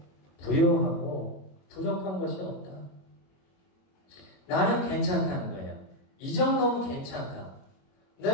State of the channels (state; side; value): late; right; 21 ms